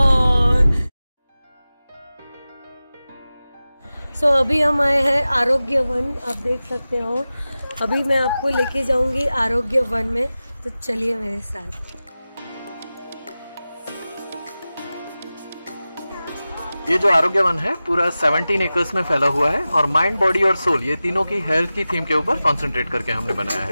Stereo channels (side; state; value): both; inverted; correlation -0.96